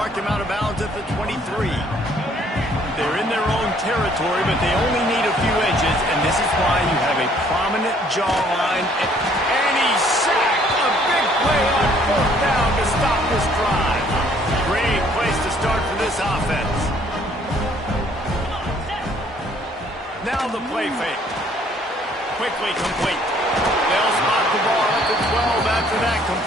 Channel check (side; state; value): both; normal; correlation 0.61